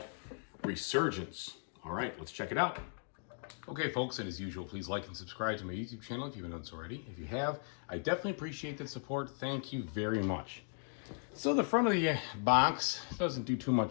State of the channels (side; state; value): right; silent; 53 dB below the other